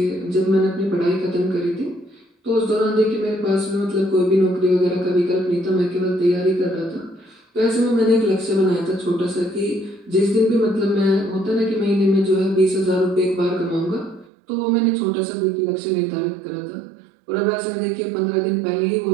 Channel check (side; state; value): left; drops out; at 14.2 s